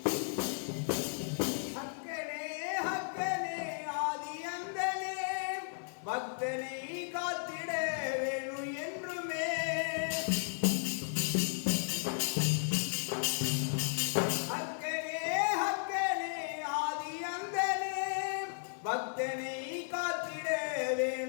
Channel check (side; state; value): right; silent; 55 dB below the other